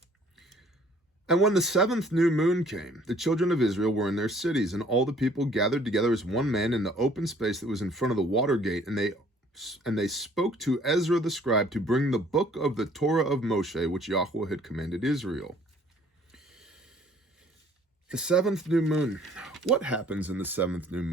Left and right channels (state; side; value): normal; both; correlation 0.57